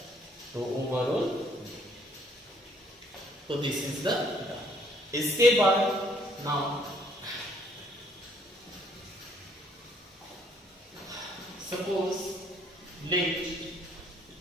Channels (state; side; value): normal; both; correlation 0.64